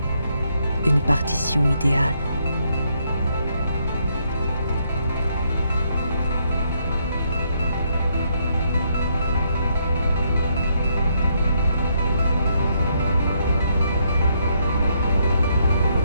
Une partition idéale.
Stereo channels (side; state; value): both; inverted; correlation -0.74